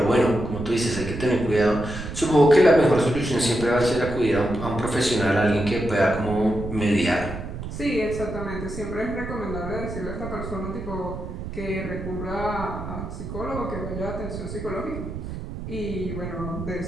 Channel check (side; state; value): right; noise; rumble, 8 dB below the sound